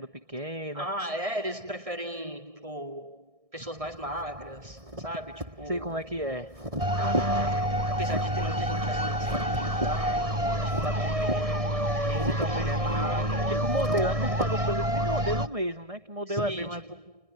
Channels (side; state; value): left; late; 1.6 ms